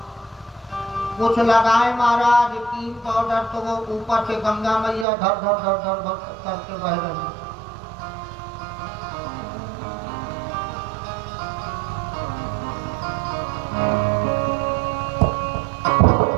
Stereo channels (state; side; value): drops out; left; at 5.1 s